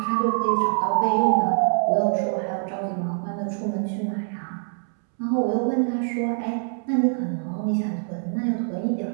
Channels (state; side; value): silent; left; 62 dB below the other